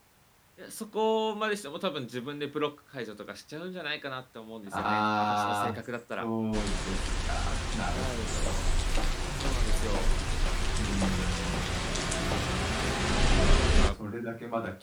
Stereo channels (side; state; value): both; identical; correlation 1.00